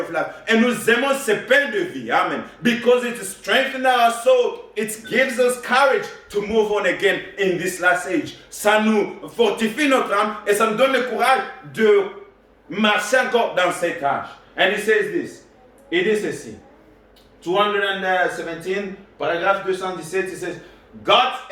life. Et nous aimons ce pain de vie. Amen. Because it strengthens our soul. It gives us courage to move on again in this last age. Ça nous fortifie notre âme et ça nous donne le courage de marcher encore dans cet âge. And he says this. Il dit ceci. 217, paragraphe 217, il says, got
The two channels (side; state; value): both; identical; correlation 1.00